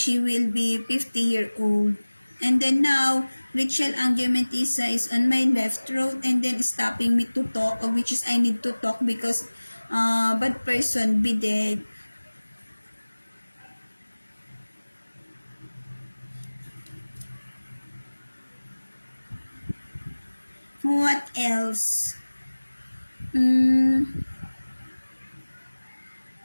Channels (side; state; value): both; inverted; correlation -1.00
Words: will be 50-year-old. And then now, Rachel Angiomentisa is on my left throat and then stopping me to talk, which is I need to talk because bad person be dead. What else?